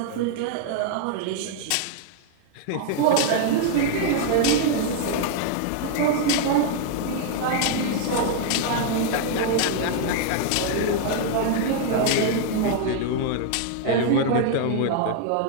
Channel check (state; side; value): different; both; correlation 0.00